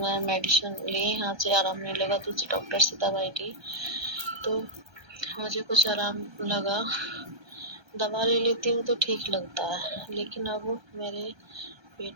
मेडिसिन ली, यहाँ से आराम नहीं लगा, दूसरे डॉक्टर से दवाई ली तो मुझे कुछ आराम लगा। दवा ले लेती हूँ तो ठीक लगता है, लेकिन अब मेरे पेट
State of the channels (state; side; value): late; left; 1.3 ms